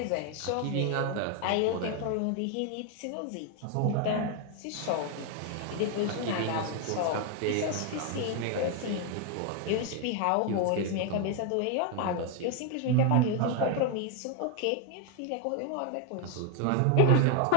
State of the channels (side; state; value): both; different; correlation 0.01